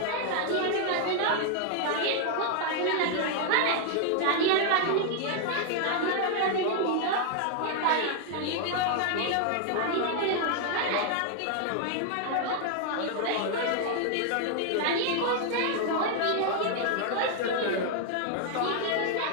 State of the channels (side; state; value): both; different; correlation 0.00